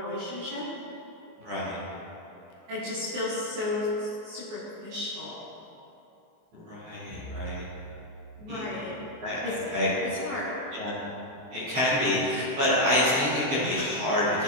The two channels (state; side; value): late; left; 23 ms